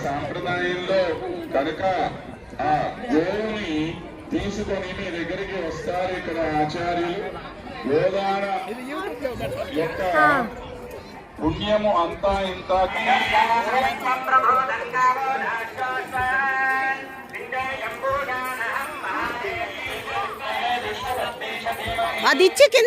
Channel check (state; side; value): identical; both; correlation 1.00